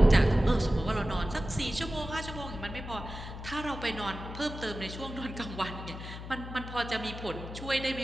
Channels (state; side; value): noise; left; hum, 10 dB below the sound